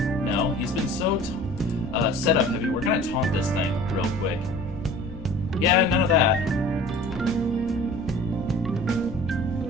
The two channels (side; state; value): both; normal; correlation 0.44